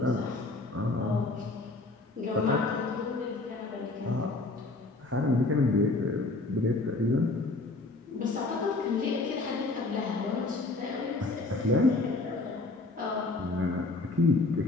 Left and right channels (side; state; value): right; quieter; 3.3 dB